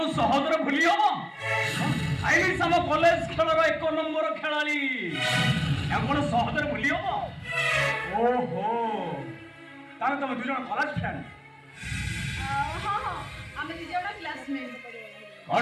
সহজরে ভুলি হবো আইলি সম কলেজ খেলর 1 নম্বর খেলাড়ি এখন সহজরে ভুলি হবো ওহো তাহলে তুমি দুজন কলেজ ফ্রেন্ড হ্যাঁ হ্যাঁ আমি দুজন ক্লাসমেট কর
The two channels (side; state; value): both; identical; correlation 1.00